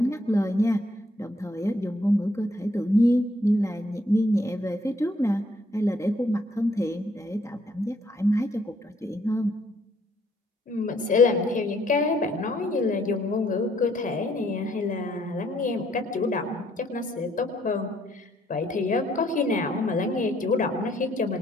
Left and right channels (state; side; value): normal; both; correlation 0.68